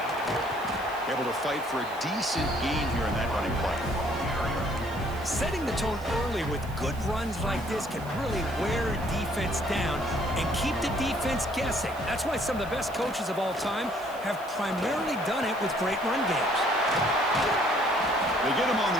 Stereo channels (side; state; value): right; noise; hiss, 21 dB below the sound